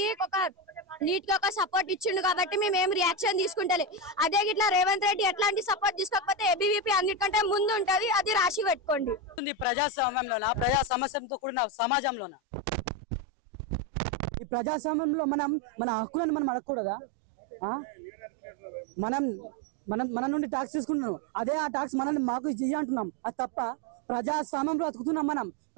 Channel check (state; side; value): drops out; left; at 12.4 s